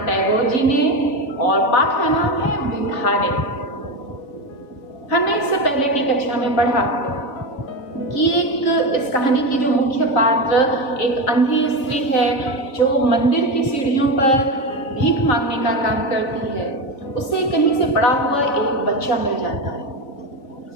टैगोर जी ने और पाठ का नाम है भिखारी। हमने इससे पहले की कक्षा में पढ़ा कि इस कहानी की जो मुख्य पात्र एक अंधी स्त्री है जो मंदिर की सीढ़ियों पर भीख मांगने का काम करती है। उसे कहीं से पड़ा हुआ एक बच्चा मिल जाता है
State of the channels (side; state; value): right; late; 3.7 ms